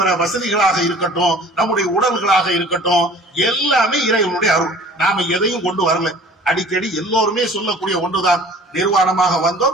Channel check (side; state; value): both; normal; correlation 0.48